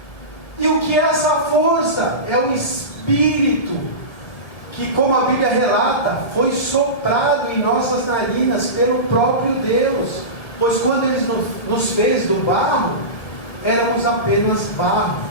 E o que é essa força? É o Espírito, que, como a Bíblia relata, foi soprado em nossas narinas pelo próprio Deus. Pois quando Ele nos fez do barro, éramos apenas barro,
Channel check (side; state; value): right; late; 1.9 ms